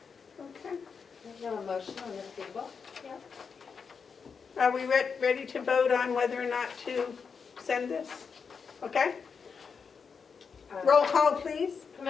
Okay. We have a motion on the table. Yeah. Are we ready to vote on whether or not to send this? Okay? Roll call, please.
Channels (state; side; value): quieter; right; 5.8 dB